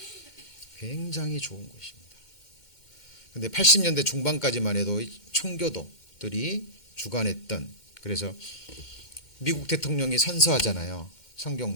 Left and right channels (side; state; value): right; late; 2.1 ms